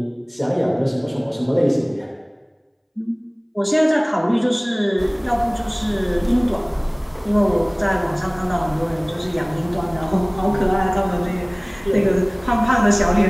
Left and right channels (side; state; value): both; identical; correlation 1.00